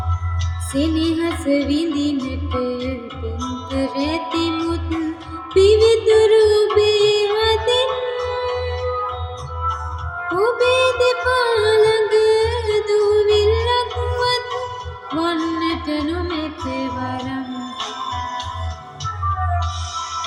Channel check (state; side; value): identical; both; correlation 1.00